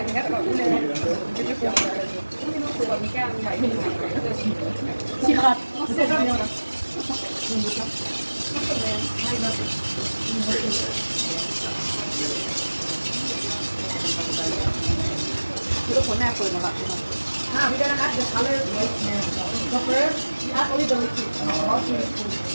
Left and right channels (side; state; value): both; inverted; correlation -1.00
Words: thứ các bạn cũng lên xịt hạt sẽ ra nhiều lắm. Cái cuốn này føler mig we're gonna add the color right now. So first, we add only the liquid.